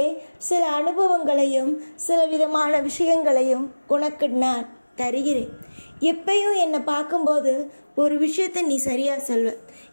சில அனுபவங்களையும் சில விதமான விஷயங்களையும் உனக்கு நான் தருகிறேன். எப்பயும் என்னை பார்க்கும்போது ஒரு விஷயத்தை நீ சரியாக சொல்வ.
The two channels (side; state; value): both; inverted; correlation -1.00